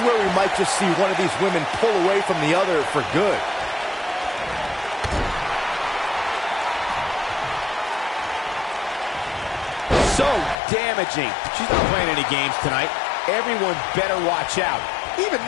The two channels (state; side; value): drops out; right; at 10.6 s